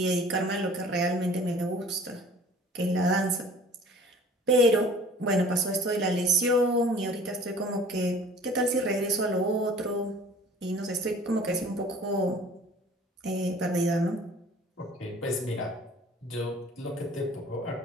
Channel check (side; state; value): both; normal; correlation 0.49